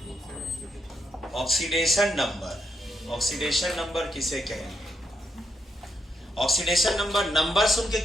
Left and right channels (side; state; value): both; normal; correlation 0.79